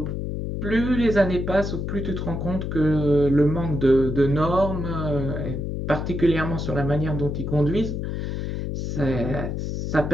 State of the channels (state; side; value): noise; left; hum, 3 dB below the sound